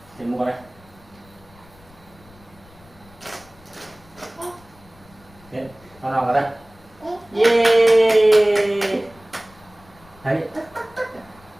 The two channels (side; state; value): left; noise; rumble, 26 dB below the sound